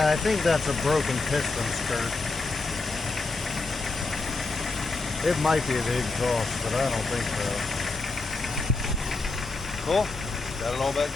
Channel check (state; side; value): quieter; right; 3.6 dB